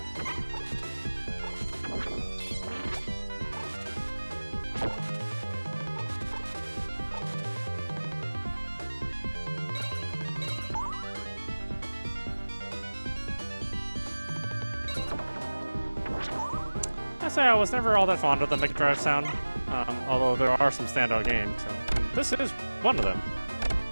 I say I was never all that fond of the Mega Drive sound, although there are some standout games, and this is one of them.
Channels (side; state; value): both; inverted; correlation -1.00